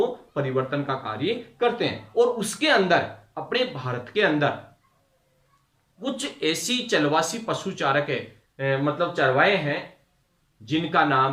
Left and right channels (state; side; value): identical; both; correlation 1.00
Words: परिवर्तन का कार्य करते हैं। और उसके अंदर अपने भारत के अंदर कुछ ऐसी चलवासी पशुचारक मतलब चरवाहे हैं जिनका